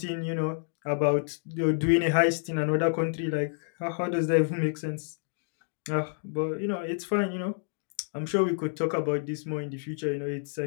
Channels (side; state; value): right; silent; digital silence